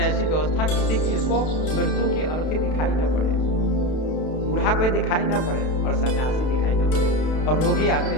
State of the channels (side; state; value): right; late; 32 ms